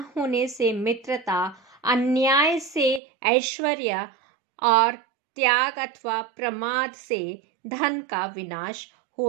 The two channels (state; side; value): drops out; left; at 3.0 s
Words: होने से मित्रता, अन्याय से ऐश्वर्य और त्याग अथवा प्रमाद से धन का विनाश